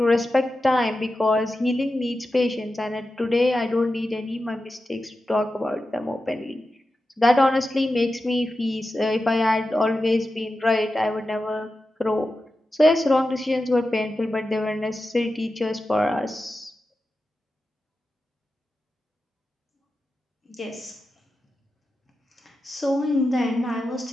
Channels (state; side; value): normal; both; correlation 0.92